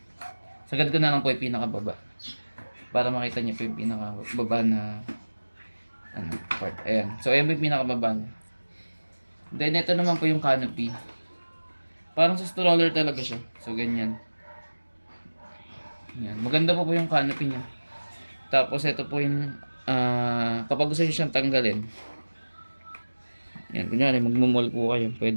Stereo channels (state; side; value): inverted; both; correlation -1.00